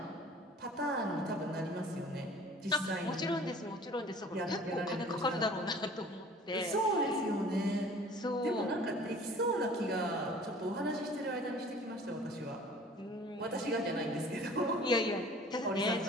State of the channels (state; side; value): normal; both; correlation 0.48